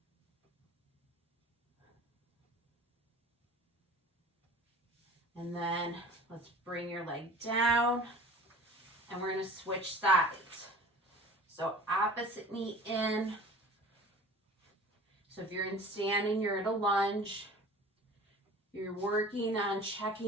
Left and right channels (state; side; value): normal; both; correlation 0.42